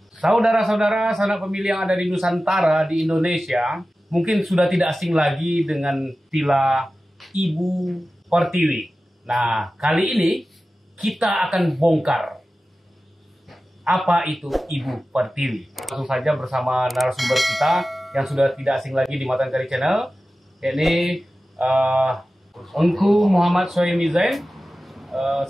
saudara-saudara sanak pemilih yang ada di Nusantara di Indonesia mungkin sudah tidak asing lagi dengan istilah Ibu Pertiwi. Nah, kali ini kita akan bongkar apa itu Ibu Pertiwi. Langsung saja bersama narasumber kita yang sudah tidak asing lagi di Matan Kari Channel, yakni Engku Muhammad Soemi Zain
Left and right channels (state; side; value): normal; both; correlation 0.95